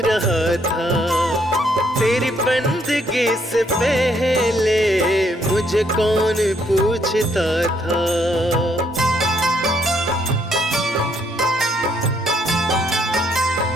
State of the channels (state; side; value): normal; both; correlation 0.70